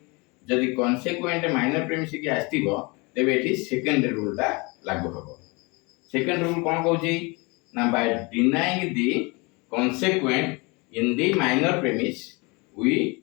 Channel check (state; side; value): quieter; right; 27.6 dB